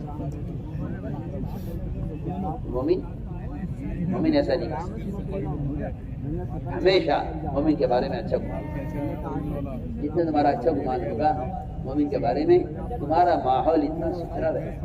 نہیں، مومن ایسا نہیں کر سکتا. ہمیشہ مومن کے بارے میں اچھا گمان. جتنا تمہارا اچھا گمان ہوگا مومن کے بارے میں، تمہارا ماحول اتنا ستھرا رہے،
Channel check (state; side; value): identical; both; correlation 1.00